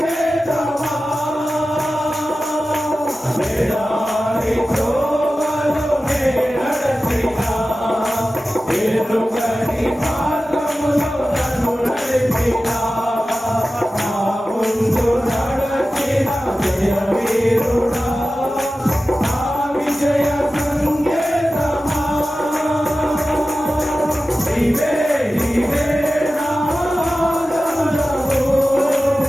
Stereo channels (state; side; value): normal; both; correlation 0.95